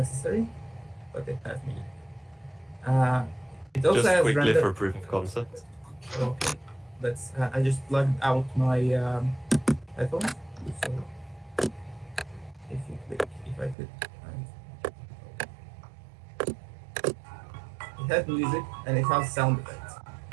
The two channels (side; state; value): left; drops out; at 13.8 s